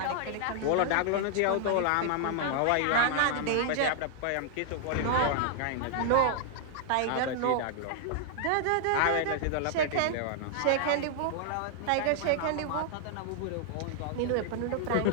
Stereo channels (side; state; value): both; different; correlation -0.01